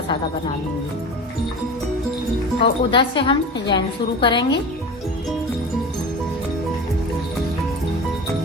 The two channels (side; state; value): both; normal; correlation 0.32